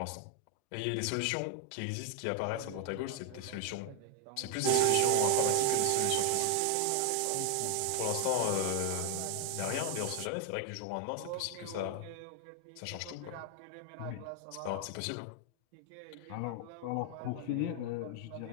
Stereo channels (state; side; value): different; both; correlation 0.00